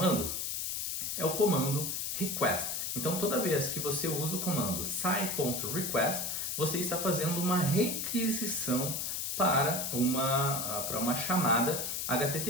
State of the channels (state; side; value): noise; left; hiss, 2 dB below the sound